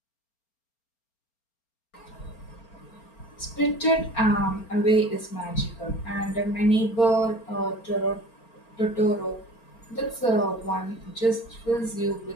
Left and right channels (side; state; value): right; late; 4.4 ms